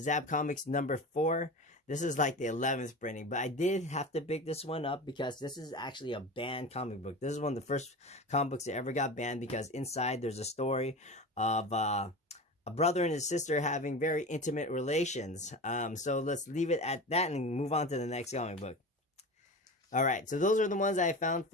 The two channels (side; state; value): both; normal; correlation 0.30